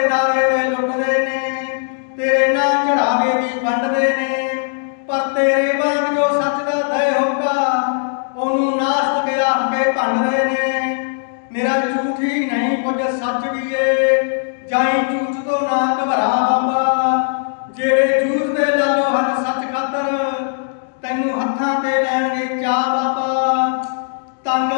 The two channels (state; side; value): silent; right; digital silence